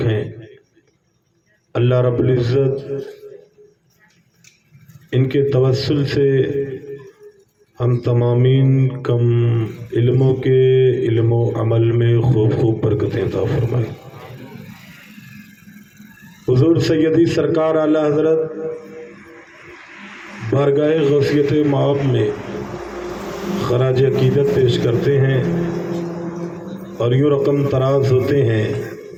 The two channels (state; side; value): identical; both; correlation 1.00